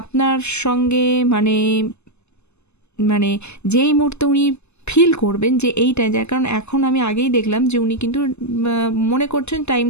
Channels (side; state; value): right; late; 0.81 ms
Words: আপনার সঙ্গে মানে মানে যেই মুহূর্তে উনি ফিল করবেন যে এইটা, যার কারণ এখন আমি আগেই দেখলাম যে উনি কিন্তু মনে করছেন